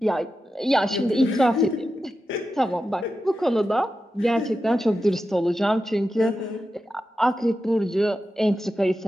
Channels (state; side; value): normal; both; correlation 0.90